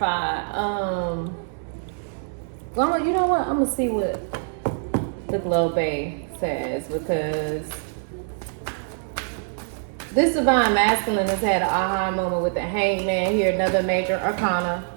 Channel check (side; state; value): left; silent; digital silence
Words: Well, you know what? I'm gonna see what the Globe says, because this divine masculine has had an aha moment with the Hangman here, another major arcana.